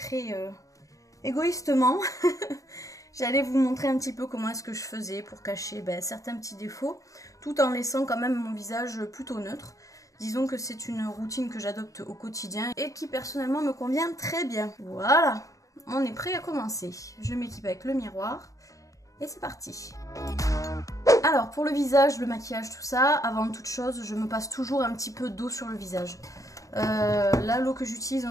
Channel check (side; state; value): right; late; 0.16 ms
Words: égoïstement, j'allais vous montrer un petit peu comment est-ce que je faisais pour cacher certains petits défauts, tout en laissant quand même mon visage plutôt neutre. Disons que c'est une routine que j'adopte au quotidien et qui personnellement me convient très bien. Voilà, on est prêt à commencer. Je m'équipe avec le miroir et c'est parti. Alors pour le visage, le maquillage, tout ça, avant toute chose, je me passe toujours un petit peu d'eau sur le visage. Là, l'eau que j'utilise